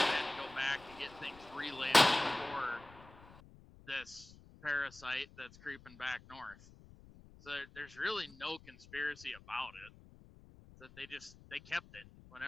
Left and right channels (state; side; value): noise; left; rumble, 21 dB below the sound